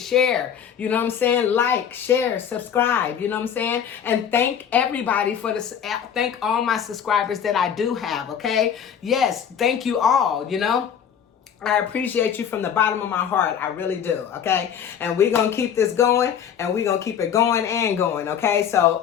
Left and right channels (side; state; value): right; quieter; 8.3 dB